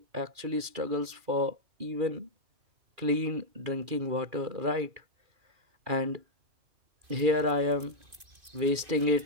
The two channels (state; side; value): late; left; 2.4 ms